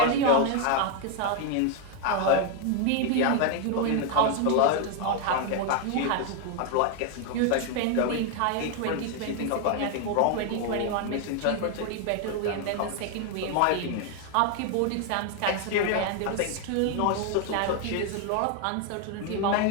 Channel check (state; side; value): different; both; correlation 0.01